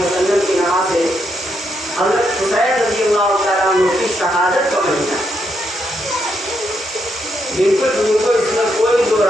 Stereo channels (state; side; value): normal; both; correlation 0.79